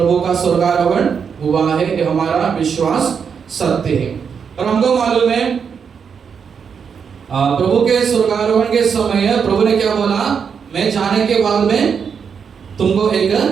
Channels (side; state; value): left; quieter; 6.6 dB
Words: का स्वर्गारोहण हुआ है, ये हमारा विश्वास सत्य है। और हमको मालूम है प्रभु के स्वर्गारोहण के समय प्रभु ने क्या बोला? मैं जाने के बाद में तुमको एक